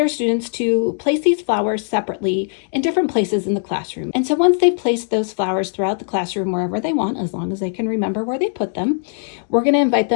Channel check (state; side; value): silent; right; digital silence